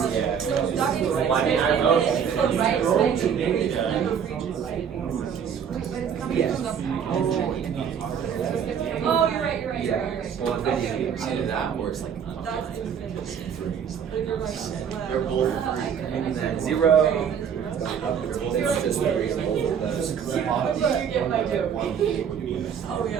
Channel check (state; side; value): quieter; left; 7.7 dB